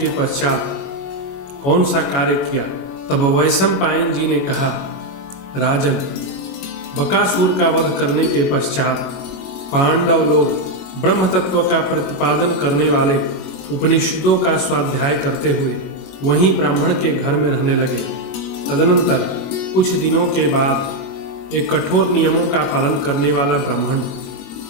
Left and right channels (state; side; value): late; right; 22 ms